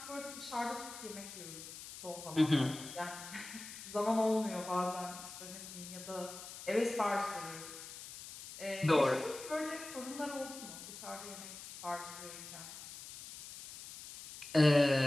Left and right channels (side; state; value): left; noise; hiss, 12 dB below the sound